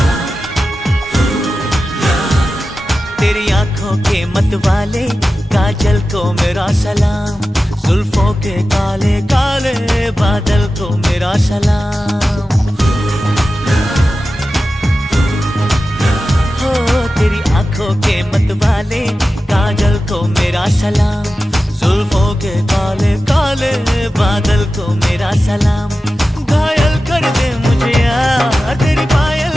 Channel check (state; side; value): normal; both; correlation 0.94